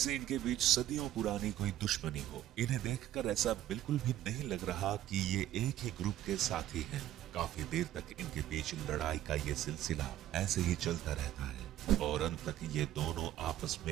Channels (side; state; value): left; quieter; 12.8 dB